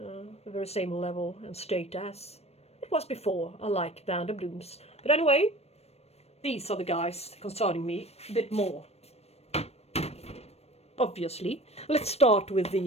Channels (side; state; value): right; late; 0.30 ms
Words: very same level and state as it was before. I like Vanda blooms. But anyway, these are the guys concerning me a bit more. Obviously. Let's start with